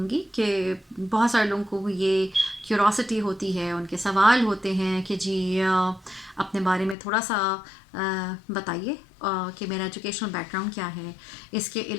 कि बहुत सारे लोगों को ये क्यूरोसिटी होती है, उनके सवाल होते हैं कि जी अपने बारे में थोड़ा सा बताइए कि मेरा एजुकेशनल बैकग्राउंड क्या है, इसके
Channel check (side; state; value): right; drops out; at 7.0 s